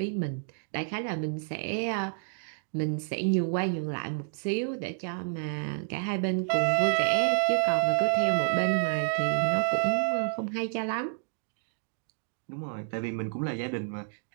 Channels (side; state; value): left; silent; 58 dB below the other